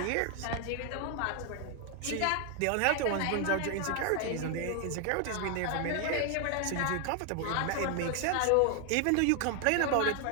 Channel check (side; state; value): both; different; correlation 0.01